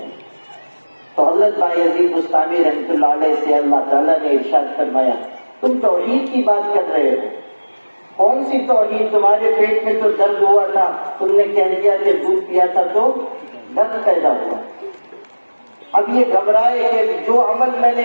تو حضرت بایزید بستامی رحمۃ اللہ علیہ سے اللہ تعالیٰ نے ارشاد فرمایا، تم توحید کی بات کر رہے ہو، کون سی توحید؟ تمہارے پیٹ میں تو درد ہوا تھا، تم نے کہہ دیا کہ دودھ پیا تھا تو درد پیدا ہوا۔ اب یہ گھبرائے کہ جو عمل میں نے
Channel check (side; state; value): both; inverted; correlation -1.00